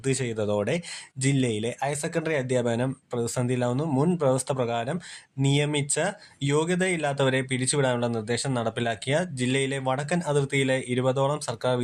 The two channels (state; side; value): identical; both; correlation 1.00